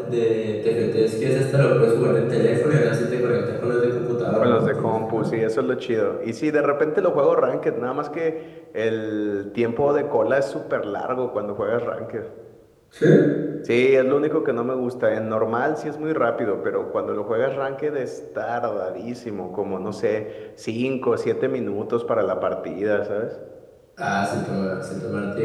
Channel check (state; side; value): identical; both; correlation 1.00